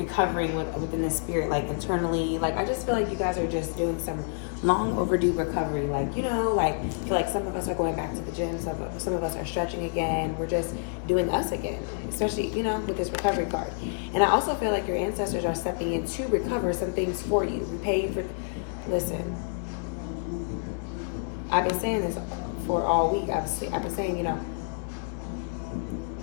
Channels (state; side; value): silent; right; digital silence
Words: within the spirit, internally. I just feel like you guys are just doing some long overdue recovery. I feel like some of us are going back to the gym. Some of us are stretching again. We're just doing us again, especially, with this recovery card. And I also feel like your ancestors are stepping in to recover some things for you. Repay you for, listen, I've been saying this for all week. I've been saying,